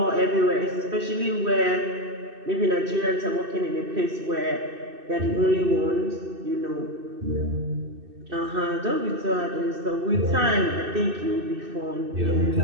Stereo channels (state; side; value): late; left; 2.6 ms